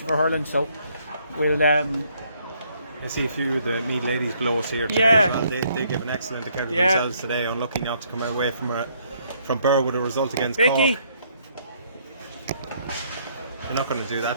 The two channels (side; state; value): both; inverted; correlation -0.68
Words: for hurling. So we'll. I see a few of the Meath ladies below us here today as well. They give an excellent account of themselves today. Unlucky not to come away from Burr with a result against Vicky. Cork. You're not going to do